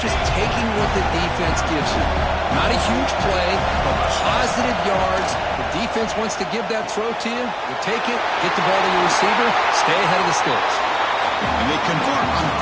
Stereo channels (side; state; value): both; identical; correlation 1.00